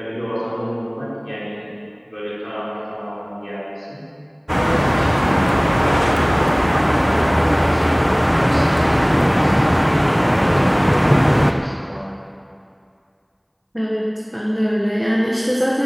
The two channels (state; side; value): identical; both; correlation 1.00